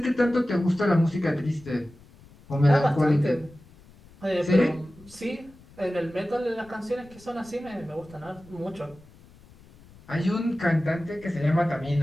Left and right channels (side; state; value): left; noise; rumble, 24 dB below the sound